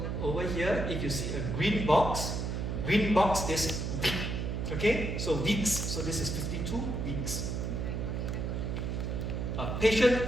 over here, if you see a green box is week. Okay, so weeks. So this is 52 weeks. patient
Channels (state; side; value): noise; right; hum, 2 dB below the sound